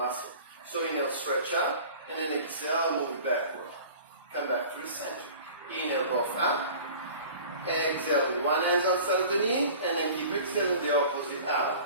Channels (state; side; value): inverted; both; correlation -0.42